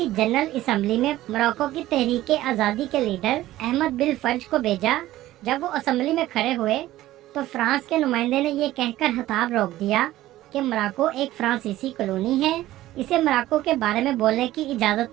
जनरल असम्बली में मोरक्को की तहरीक आज़ादी के लीडर अहमद बिन फर्ज को भेजा। जब वो असम्बली में खड़े हुए तो फ्रांस के नुमाइंदे ने ये कहकर खिताब रोक दिया कि मोरक्को एक फ्रांसीसी कॉलोनी है, इसे मोरक्को के बारे में बोलने की इजाज़त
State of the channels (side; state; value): left; quieter; 15.3 dB